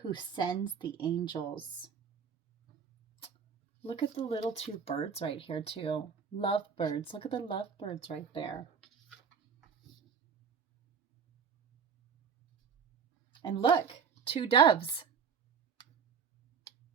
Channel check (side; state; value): left; quieter; 6.6 dB